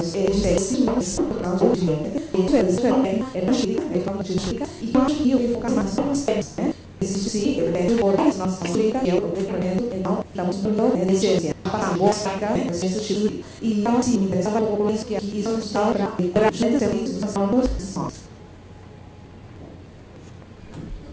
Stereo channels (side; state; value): both; identical; correlation 1.00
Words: de segurança para o último é na chuva então de chuva e acho que eu vou ficar mais se por nossa música que é o declarando então estamos no essência para mostrar esse tipo e então assim me interessava um pouco isso que aqui está para a gente ter isso dos sons